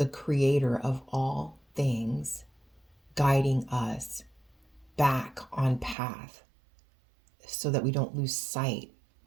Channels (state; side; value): drops out; left; at 6.0 s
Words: creator of all things, guiding us back on path so that we don't lose sight